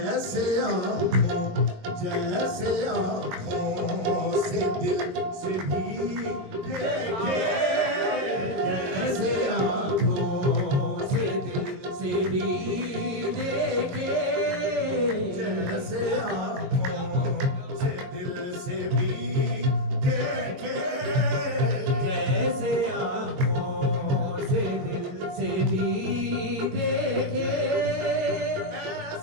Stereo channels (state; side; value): late; left; 22 ms